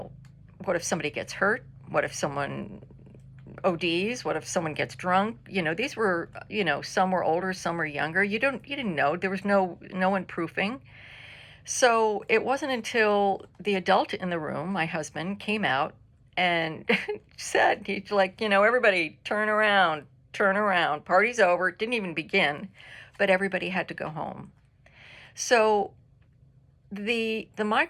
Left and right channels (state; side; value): identical; both; correlation 1.00